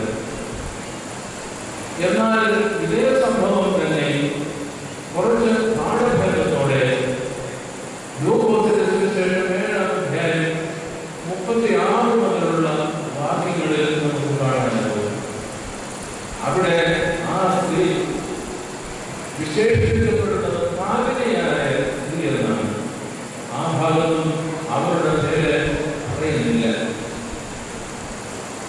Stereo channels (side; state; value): both; identical; correlation 1.00